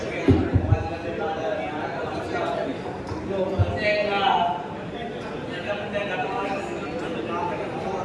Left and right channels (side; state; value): both; identical; correlation 1.00